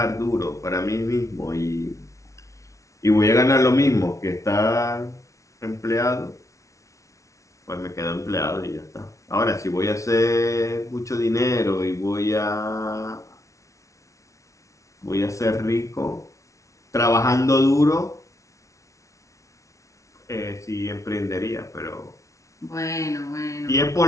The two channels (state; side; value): late; right; 0.15 ms